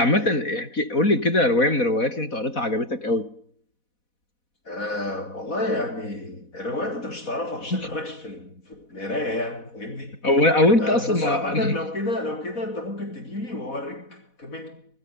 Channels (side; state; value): right; late; 4.1 ms